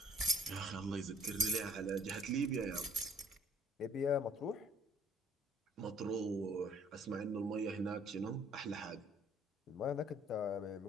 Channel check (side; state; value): both; normal; correlation 0.56